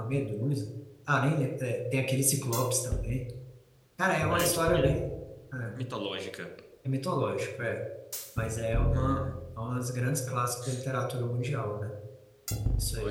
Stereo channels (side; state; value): both; identical; correlation 1.00